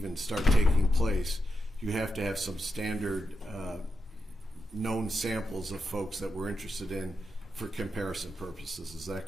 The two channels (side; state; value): both; normal; correlation 0.86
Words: start taking place, you have to have some standard known samples of folks that we're interested in for comparison purposes. Is